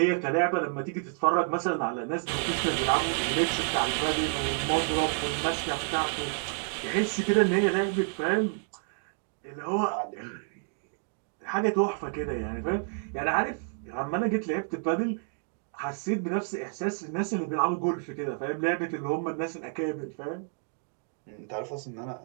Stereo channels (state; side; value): silent; left; 58 dB below the other